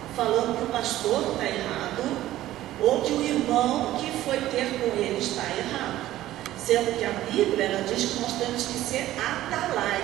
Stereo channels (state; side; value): quieter; left; 14.5 dB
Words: falando que o pastor está errado ou que o irmão que foi ter com ele está errado. Sendo que a Bíblia ela diz que nós temos que ser